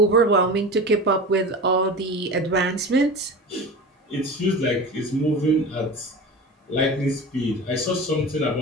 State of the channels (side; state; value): both; normal; correlation 0.31